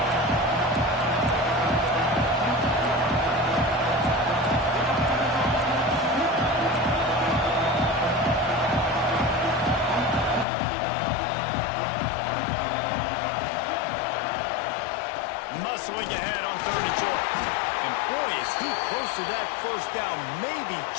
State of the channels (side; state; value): right; drops out; at 10.5 s